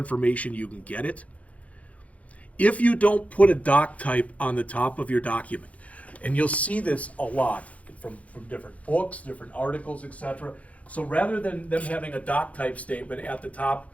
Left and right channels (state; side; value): late; right; 0.066 ms